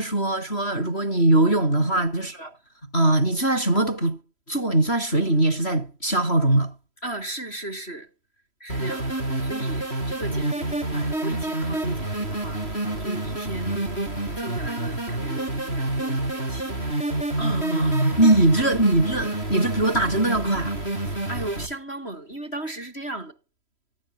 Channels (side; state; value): right; late; 3.1 ms